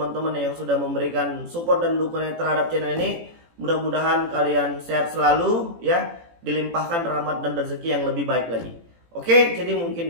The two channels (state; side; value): late; left; 18 ms